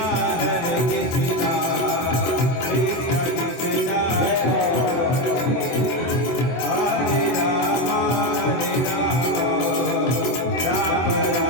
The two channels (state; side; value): late; right; 24 ms